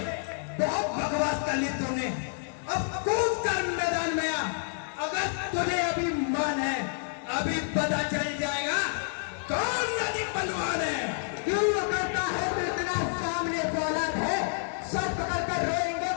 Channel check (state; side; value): silent; right; digital silence